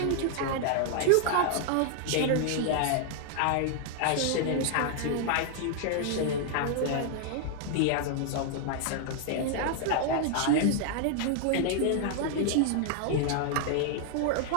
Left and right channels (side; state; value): both; different; correlation 0.00